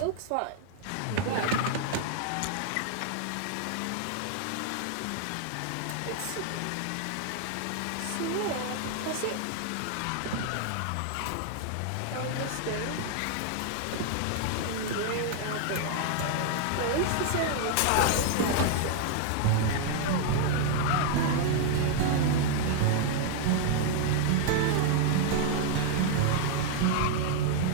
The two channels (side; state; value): both; different; correlation 0.00